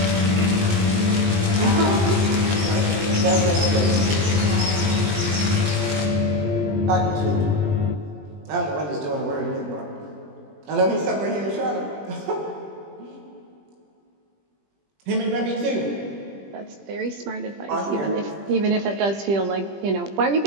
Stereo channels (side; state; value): left; late; 20 ms